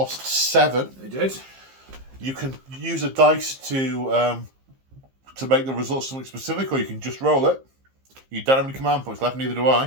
7. They did. You can use a dice to make the result something specific, or you can just roll it. You don't have any command points left, neither do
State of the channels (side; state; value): left; late; 15 ms